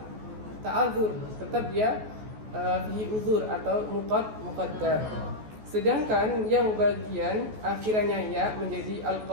ta'adzur, tetap dia fihi uzur atau muqaddar. Sedangkan yang bagian akhirannya ya menjadi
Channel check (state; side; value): late; left; 14 ms